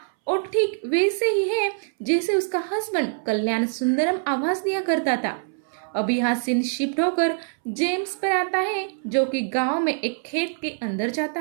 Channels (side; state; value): left; silent; 62 dB below the other